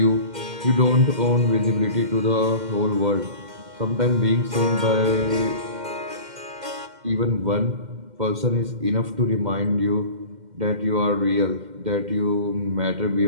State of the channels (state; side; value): late; left; 2.1 ms